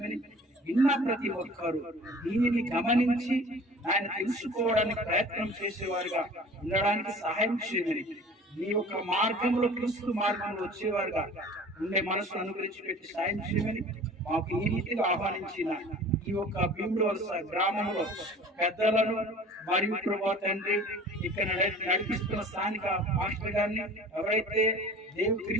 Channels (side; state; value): both; normal; correlation 0.44